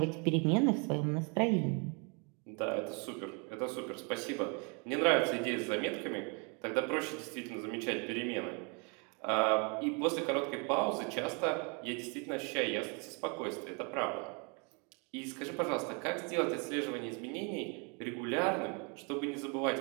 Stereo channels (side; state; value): left; quieter; 33.3 dB